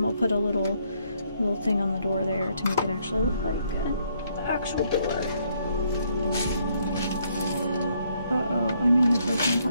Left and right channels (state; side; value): inverted; both; correlation -0.70